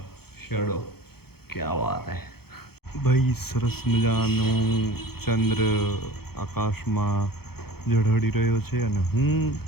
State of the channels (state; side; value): late; right; 0.96 ms